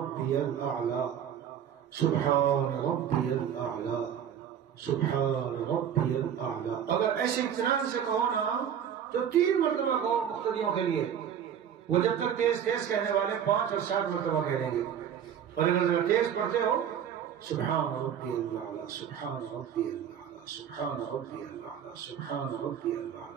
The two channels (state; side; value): quieter; left; 9.0 dB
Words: الاعلی، سبحان ربی الاعلی، سبحان ربی الاعلی۔ اگر ایسے اطمینان سے کہو نا تو 3 مرتبہ کہو مقتدیوں کے لیے. وہ جب تک تیز تیز کہنے والے 5 اور 7 مرتبہ کہہ دیں گے. اور اگر تیز پڑھتے ہو سبحان ربی اللہ سبحان ربی اللہ سبحان ربی اللہ سبحان ربی